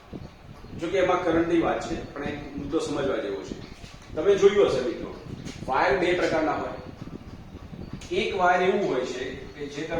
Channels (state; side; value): identical; both; correlation 1.00